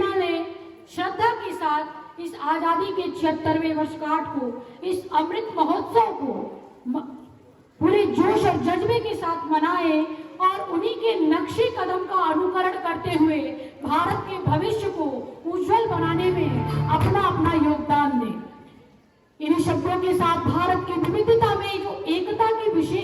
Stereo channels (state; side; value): identical; both; correlation 1.00